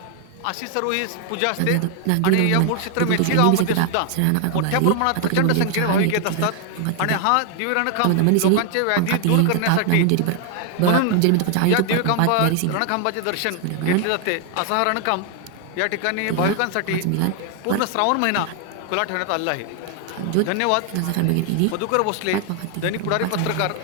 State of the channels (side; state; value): both; different; correlation 0.00